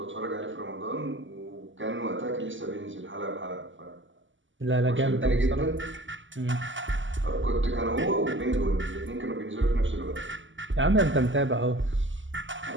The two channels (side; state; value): left; late; 0.55 ms